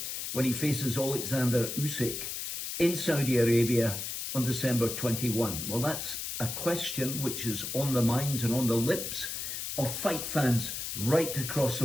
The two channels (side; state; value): left; noise; hiss, 5 dB below the sound